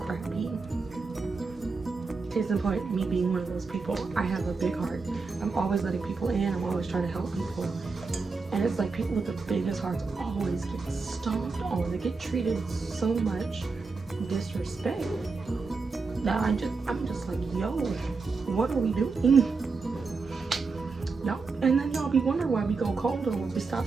Case in point, me being one of those people, I have a big heart. I'm always letting people in, I'm always trying to help people. And it's like people with the biggest hearts always get stomped on. They get treated so much disrespect. Now I'm just like, yo, what are we doing? No, and then y'all be wondering why we go colder when we stop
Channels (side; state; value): left; quieter; 4.4 dB